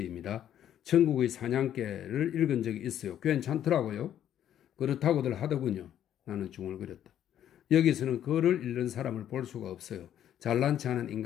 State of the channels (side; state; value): right; quieter; 10.6 dB